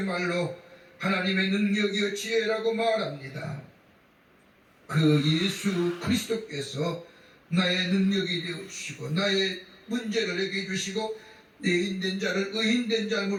말로 하나님의 능력이요 지혜라고 말합니다. 그 예수 그리스도께서 나의 능력이 되어주시고 나의 문제를 해결해 주시고 내 인된 자를 의인된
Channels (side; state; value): both; identical; correlation 1.00